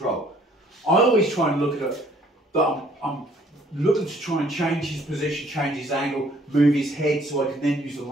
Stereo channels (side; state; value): both; normal; correlation 0.60